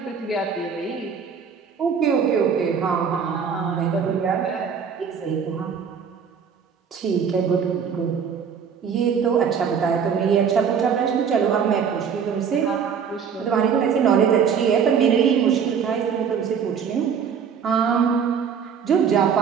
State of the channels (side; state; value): left; quieter; 6.9 dB